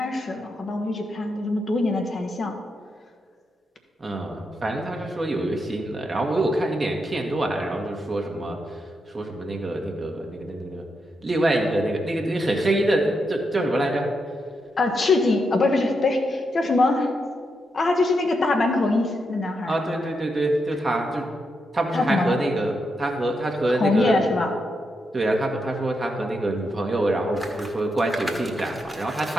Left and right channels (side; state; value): both; normal; correlation 0.83